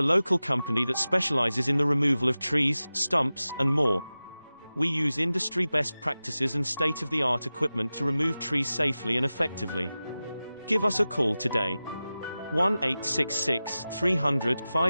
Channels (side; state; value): both; inverted; correlation -0.95